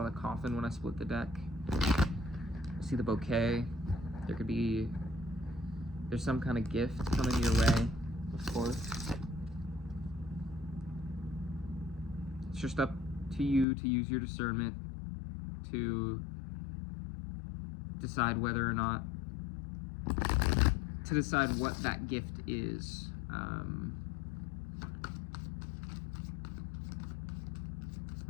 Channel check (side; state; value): right; drops out; at 13.7 s